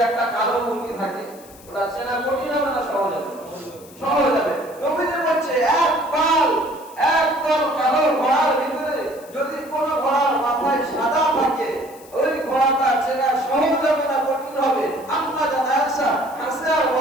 একটা কালো মুরগি থাকে, ওটা চেনা কঠিন হবে না সহজ হবে? সহজ হবে। নবীজি বলছে, এক পাল, একদম কালো ঘোড়ার ভিতরে যদি কোনো ঘোড়ার মাথায় সাদা থাকে, ওই ঘোড়াটা চেনা সহজ হবে না কঠিন হবে? আম্মা জানা আয়েশা হাসে আর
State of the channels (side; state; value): left; noise; hiss, 23 dB below the sound